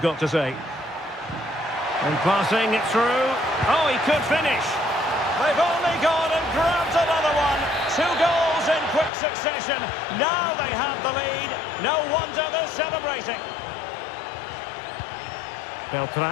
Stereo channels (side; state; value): right; drops out; at 9.1 s